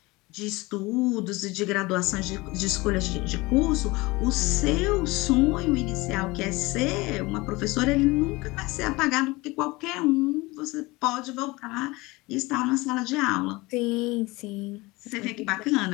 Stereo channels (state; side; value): quieter; right; 22.5 dB